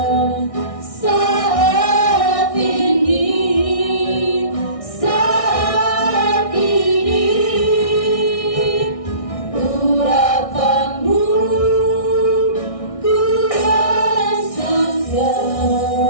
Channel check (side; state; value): right; late; 1.6 ms